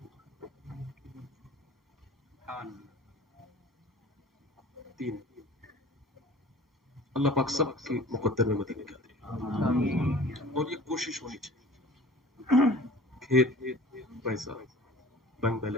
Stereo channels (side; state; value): both; normal; correlation 0.44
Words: تین۔ اللہ پاک سب کی مقدر میں مدینہ کیا دے، اور یہ کوشش ہونی چاہیے، کھیت پیسہ بینک